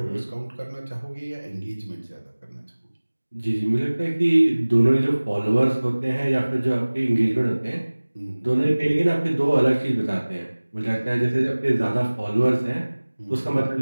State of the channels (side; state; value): both; inverted; correlation -1.00